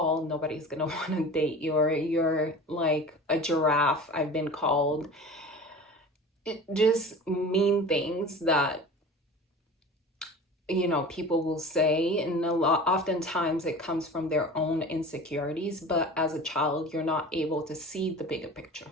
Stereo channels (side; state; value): both; normal; correlation 0.37